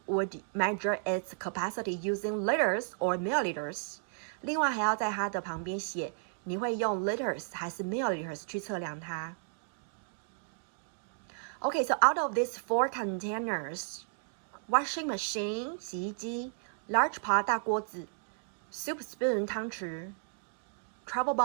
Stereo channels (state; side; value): silent; left; digital silence